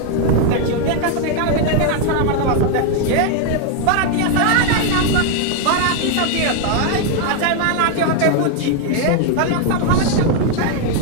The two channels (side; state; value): both; different; correlation 0.00